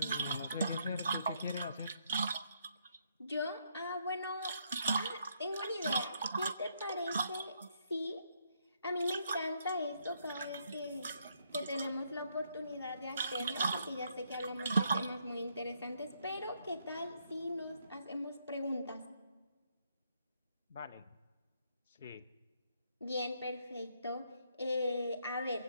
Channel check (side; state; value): both; inverted; correlation -0.73